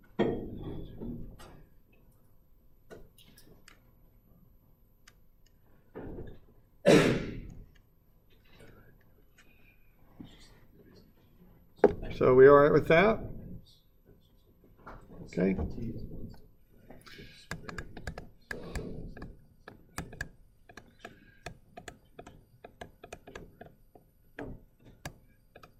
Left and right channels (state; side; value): identical; both; correlation 1.00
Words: So we all right with that? Okay.